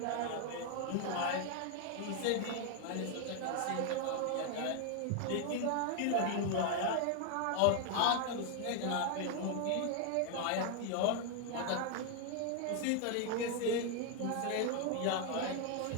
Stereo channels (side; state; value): both; different; correlation 0.00